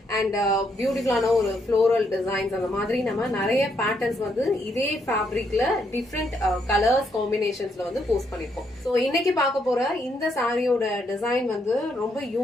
and பியூட்டிஃபுல்லான ஒரு ஃப்ளோரல் டிசைன்ஸ் அந்த மாதிரி நம்ம நிறைய பேட்டர்ன்ஸ் வந்து இதே ஃபேப்ரிக்ல டிஃப்ரெண்ட் கலர்ஸ் காம்பினேஷன்ஸ்ல வந்து போஸ்ட் பண்ணிருக்கோம். சோ இன்னைக்கு பார்க்க போற இந்த சாரியோட டிசைன் வந்து ரொம்ப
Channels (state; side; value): normal; both; correlation 0.75